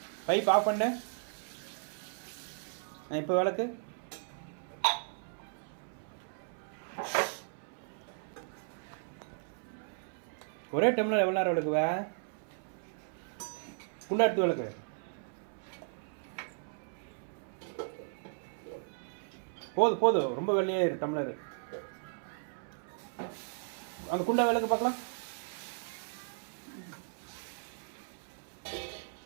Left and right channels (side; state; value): left; silent; 54 dB below the other